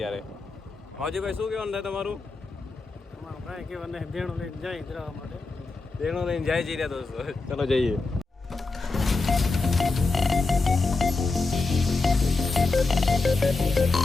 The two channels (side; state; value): right; quieter; 3.7 dB